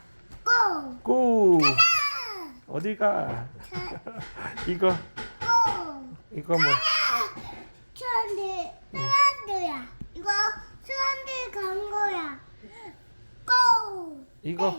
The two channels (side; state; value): both; inverted; correlation -1.00